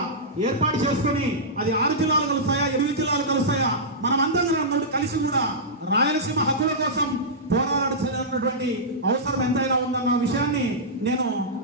ఏర్పాటు చేసుకుని అది 6 జిల్లాలు కలుస్తాయా 8 జిల్లాలు కలుస్తాయా మనమందరం కలిసి కూడా రాయలసీమ హక్కుల కోసం పోరాడాల్సినటువంటి అవసరం ఎంతైనా ఉందన్న విషయాన్ని నేను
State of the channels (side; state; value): both; normal; correlation -0.13